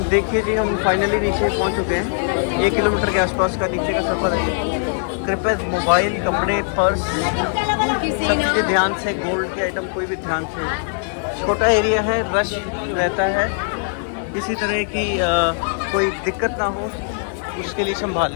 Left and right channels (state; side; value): silent; right; 65 dB below the other